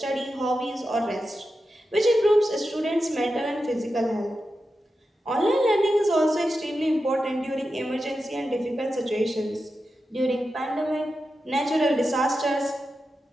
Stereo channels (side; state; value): both; normal; correlation 0.90